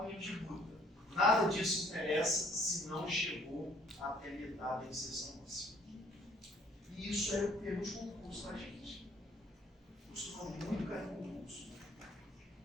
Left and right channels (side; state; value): both; normal; correlation 0.61